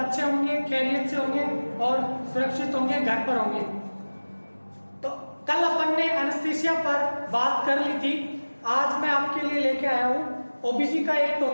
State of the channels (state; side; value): inverted; both; correlation -1.00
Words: होंगे, खैरियत से होंगे और सुरक्षित होंगे, घर पर होंगे। तो कल अपन ने एनेस्थीसिया पर बात कर ली थी। आज मैं आपके लिए लेके आया हूं ओबीसी का एक